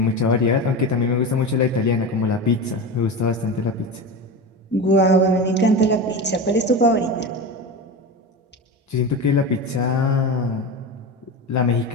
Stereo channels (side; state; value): both; normal; correlation 0.24